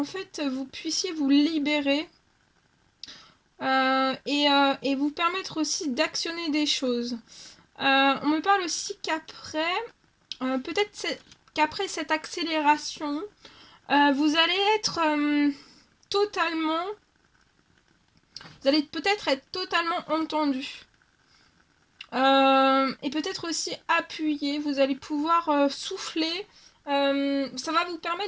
fait, vous puissiez vous libérer et vous permettre aussi d'actionner des choses. On me parle aussi qu'après, peut-être qu'après cette accélération, vous allez être totalement, vous allez peut-être être totalement entendu. Et peut-être aussi appuyé, vous allez pouvoir souffler. Ça va vous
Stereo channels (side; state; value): both; identical; correlation 1.00